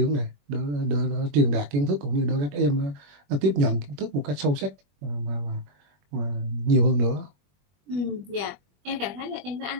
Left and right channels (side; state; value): left; late; 21 ms